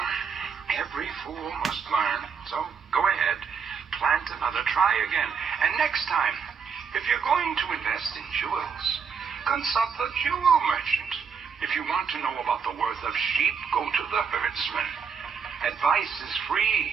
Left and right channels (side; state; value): left; quieter; 6.2 dB